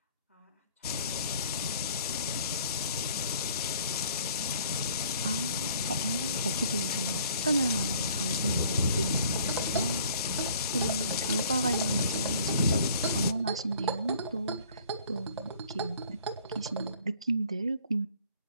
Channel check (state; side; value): inverted; both; correlation -0.55